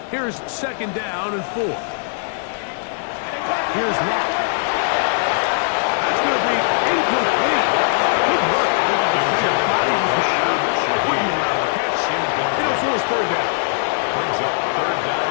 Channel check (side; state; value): right; silent; digital silence